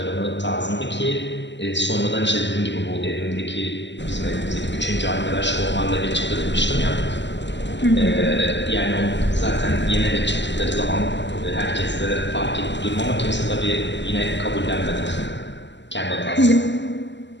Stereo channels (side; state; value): right; late; 0.52 ms